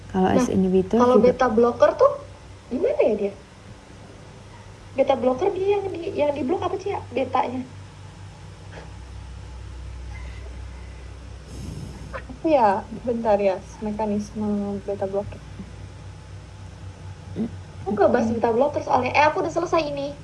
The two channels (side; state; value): both; identical; correlation 1.00